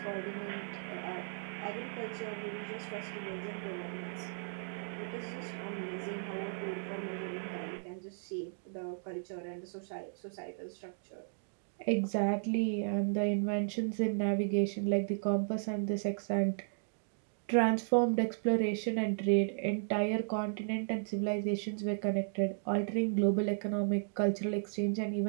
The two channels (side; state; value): left; silent; digital silence